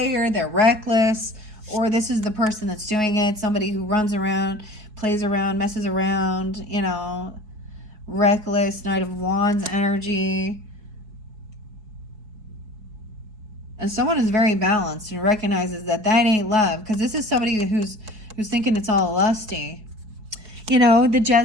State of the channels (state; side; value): late; left; 4.7 ms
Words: they're reckless, or this is the person that's doing it, somebody who runs around, plays around, messes around, reckless, Knight of Wands energy. And someone is very balanced and recognizes that ain't love, because this is somebody who's thinking it's all lusty. The